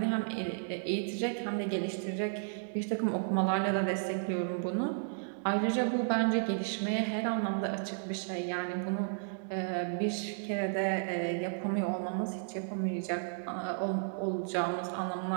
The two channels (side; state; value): left; silent; digital silence